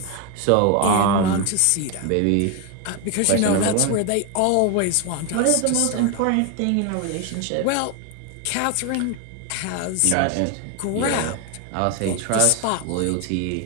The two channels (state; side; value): different; both; correlation 0.01